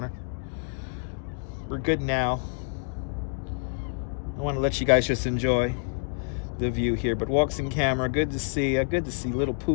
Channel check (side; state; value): right; silent; 60 dB below the other